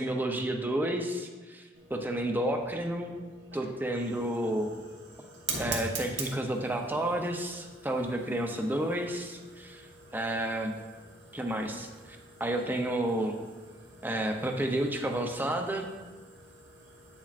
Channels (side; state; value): both; normal; correlation 0.65